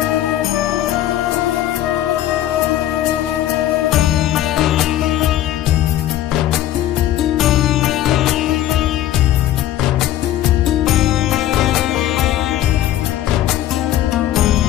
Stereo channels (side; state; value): right; quieter; 12.8 dB